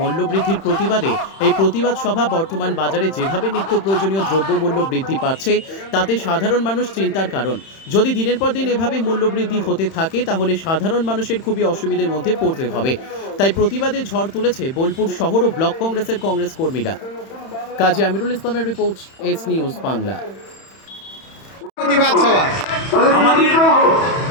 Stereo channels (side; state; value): right; late; 31 ms